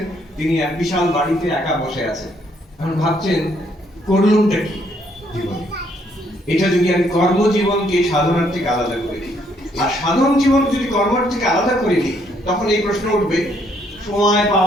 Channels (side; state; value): both; normal; correlation 0.69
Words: তিনি এক বিশাল বাড়িতে একা বসে আছেন। এখন ভাবছেন, করলুমটা কি জীবনে? এটা যদি আমি কর্মজীবনকে সাধনার থেকে আলাদা করে দিই, আর সাধন জীবন যদি কর্মের থেকে আলাদা করে দিই, তখন এই প্রশ্ন উঠবে, সময়